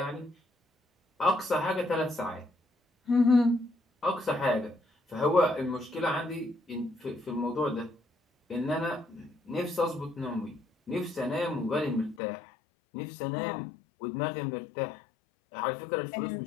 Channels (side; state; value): right; drops out; at 12.2 s